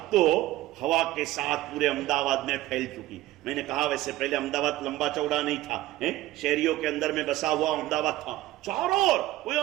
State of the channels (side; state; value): left; quieter; 16.2 dB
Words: तो हवा के साथ पूरे अहमदाबाद में फैल चुकी। मैंने कहा वैसे पहले अहमदाबाद लंबा चौड़ा नहीं था, शहरियों के अंदर में बसा हुआ अहमदाबाद था। चारों ओर कोई